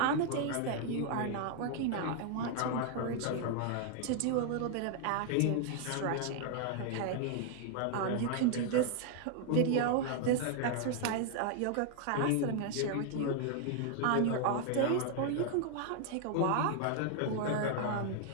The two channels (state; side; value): different; both; correlation 0.00